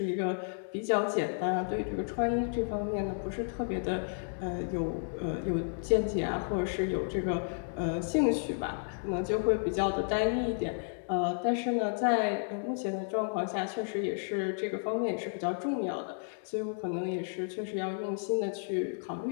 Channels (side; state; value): right; silent; digital silence